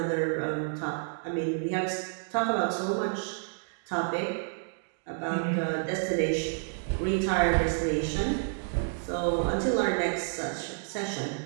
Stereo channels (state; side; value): silent; left; 58 dB below the other